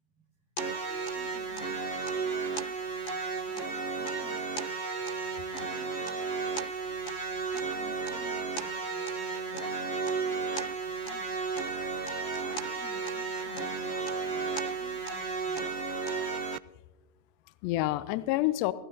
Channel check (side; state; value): right; late; 14 ms